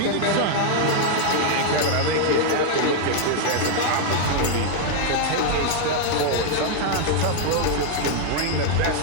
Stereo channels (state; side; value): different; both; correlation 0.00